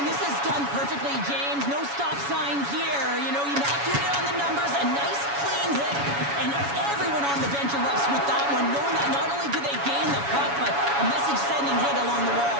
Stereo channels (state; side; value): late; left; 7.1 ms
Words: this is done perfectly, James. No stop sign here. You know, you're not doing it on the numbers. A nice, clean hit. And everyone on the bench erupts with that one, knowing that not only do they gain the puck, but a message-sending hit along the